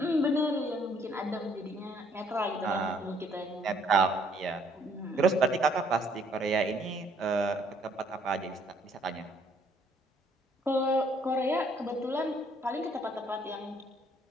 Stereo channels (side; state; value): both; normal; correlation 0.64